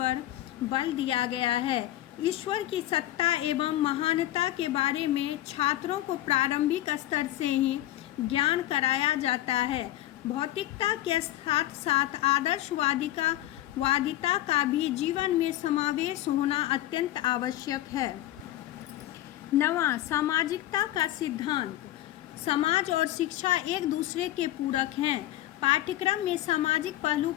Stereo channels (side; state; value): right; quieter; 14.6 dB